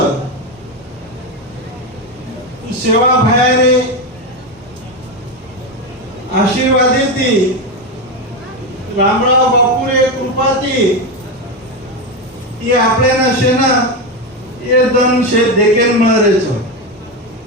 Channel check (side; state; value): both; normal; correlation 0.13